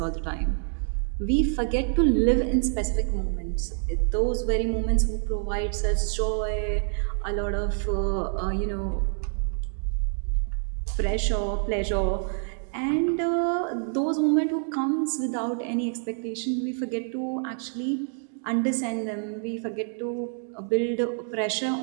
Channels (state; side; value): silent; left; 60 dB below the other